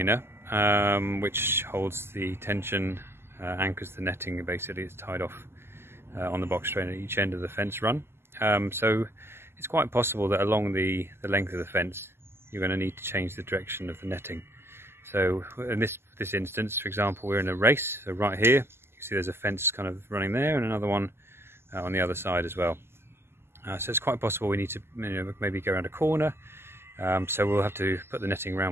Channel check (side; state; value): left; late; 0.12 ms